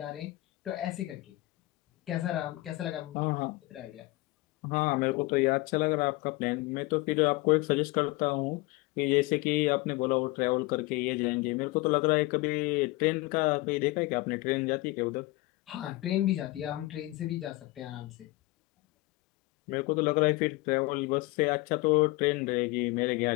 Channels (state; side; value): quieter; right; 21.0 dB